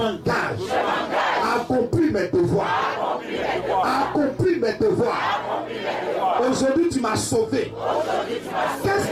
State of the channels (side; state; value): both; identical; correlation 1.00